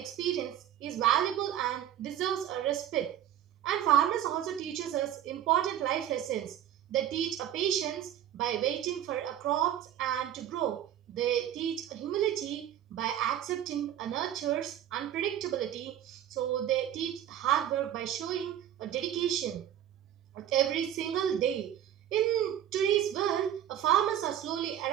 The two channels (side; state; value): left; quieter; 10.9 dB